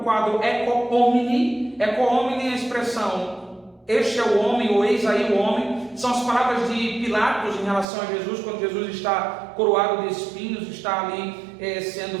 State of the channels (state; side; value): drops out; left; at 7.9 s